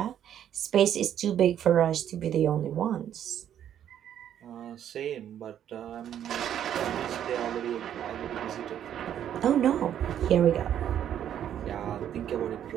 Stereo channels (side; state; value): left; quieter; 10.1 dB